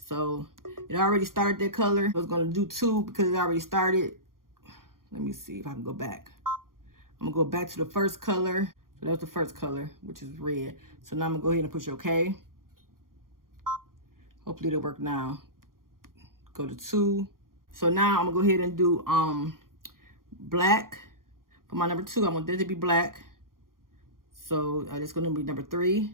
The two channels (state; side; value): late; left; 0.91 ms